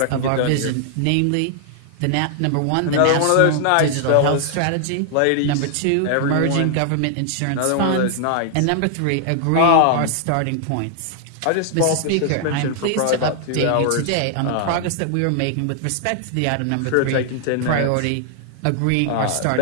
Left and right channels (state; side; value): different; both; correlation 0.00